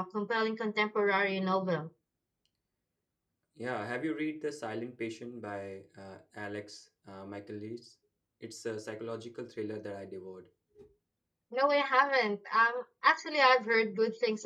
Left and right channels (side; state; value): both; identical; correlation 1.00